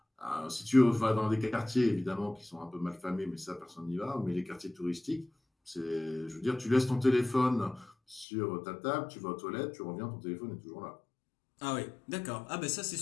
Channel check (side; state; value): right; drops out; at 8.2 s